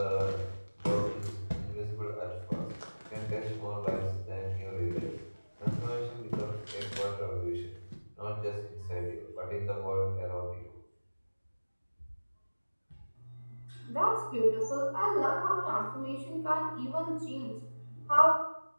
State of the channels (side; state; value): both; inverted; correlation -1.00